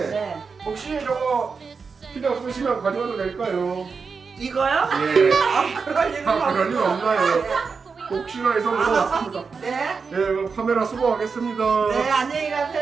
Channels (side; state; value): left; quieter; 5.2 dB